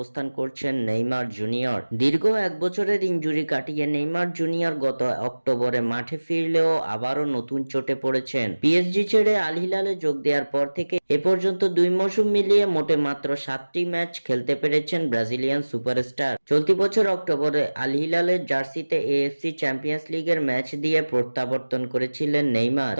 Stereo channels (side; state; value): both; inverted; correlation -1.00